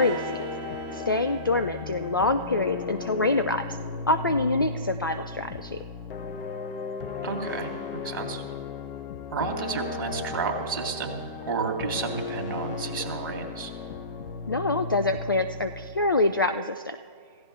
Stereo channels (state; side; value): inverted; both; correlation -0.34